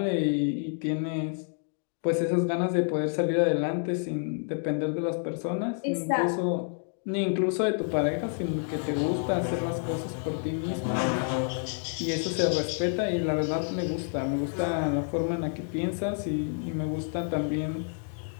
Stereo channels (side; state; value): right; silent; 59 dB below the other